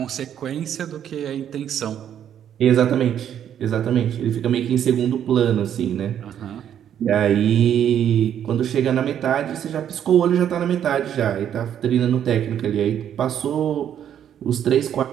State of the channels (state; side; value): quieter; left; 9.7 dB